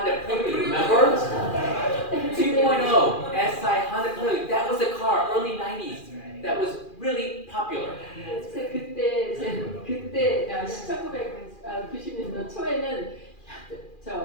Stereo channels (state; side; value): late; right; 2.4 ms